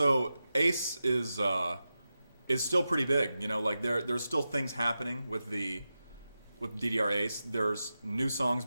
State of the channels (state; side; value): inverted; both; correlation -0.92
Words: Ace is still pretty big. Like there's still things happening with DDR Ace. There's new songs